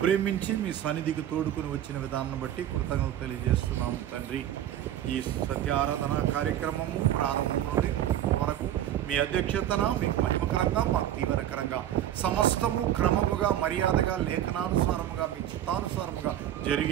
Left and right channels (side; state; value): left; quieter; 11.6 dB